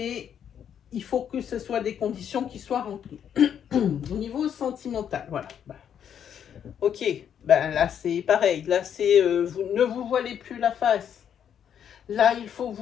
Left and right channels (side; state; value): right; quieter; 8.8 dB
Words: il faut que ce soit des conditions qui soient remplies. Au niveau sentimental, voilà. Ok. Là, c'est pareil. Là, c'est ne vous voilez plus la face. Là, il faut